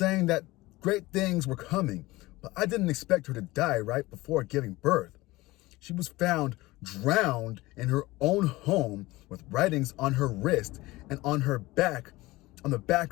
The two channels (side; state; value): right; quieter; 19.8 dB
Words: that great things were coming, but I didn't expect her to die right before giving birth. She was found drowned in her own home with writings on her wrist and on her back, on the